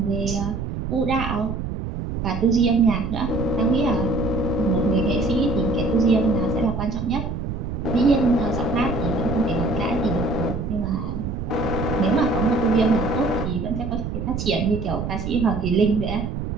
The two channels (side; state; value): right; noise; rumble, 4 dB below the sound